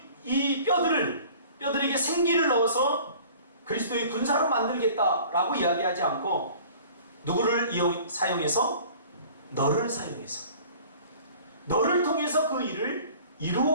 이 뼈들에게 생기를 넣어서 그리스도의 군사로 만들겠다라고 이야기하지 않고 누구를 사용해서? 너를 사용해서 너를 통해서 그 일을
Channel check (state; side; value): inverted; both; correlation -0.47